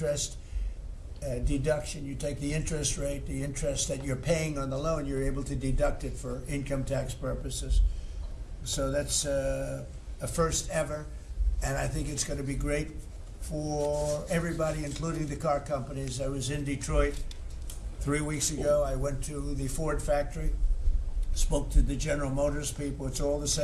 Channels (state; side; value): identical; both; correlation 1.00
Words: deduction. You take the interest rate, the interest that you're paying on the loan, you're able to deduct it for income tax purposes. So that's a first ever, and I think it's going to be great for everybody, including the car companies. I was in Detroit 3 weeks ago, I went to the Ford factory, spoke to the General Motors people. It's all the